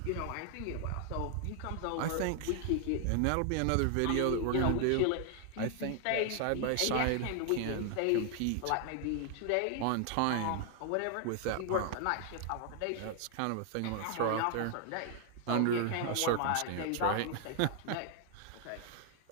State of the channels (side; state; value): both; different; correlation 0.00